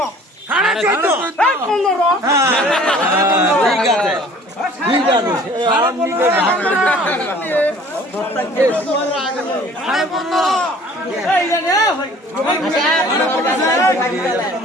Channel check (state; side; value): normal; both; correlation 0.51